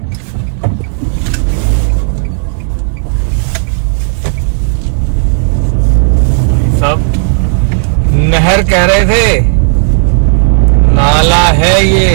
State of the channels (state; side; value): silent; left; digital silence